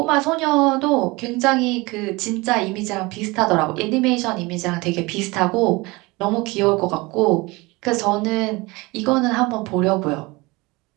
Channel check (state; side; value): quieter; left; 23.6 dB